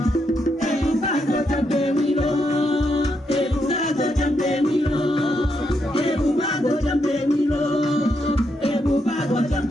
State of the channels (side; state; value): both; normal; correlation 0.80